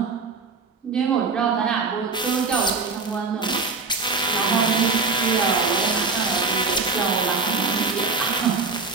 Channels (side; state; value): left; quieter; 4.4 dB